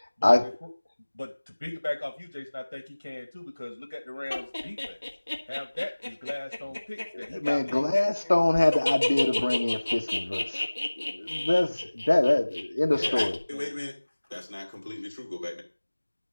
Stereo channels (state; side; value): inverted; both; correlation -1.00